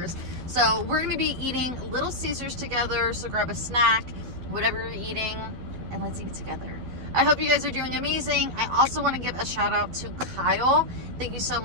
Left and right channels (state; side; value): late; left; 12 ms